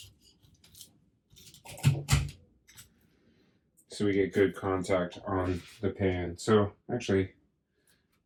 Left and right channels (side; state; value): both; identical; correlation 1.00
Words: So we get good contact on the pan. So actually,